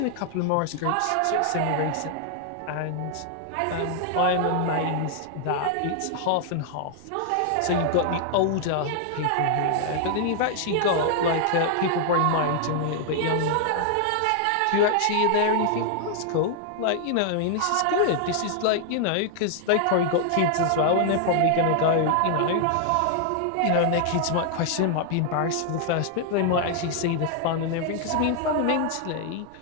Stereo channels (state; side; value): different; both; correlation 0.00